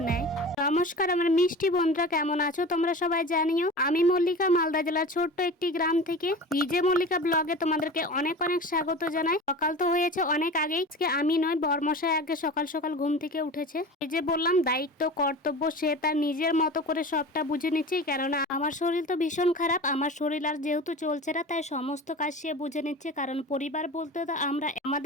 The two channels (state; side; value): normal; both; correlation 0.34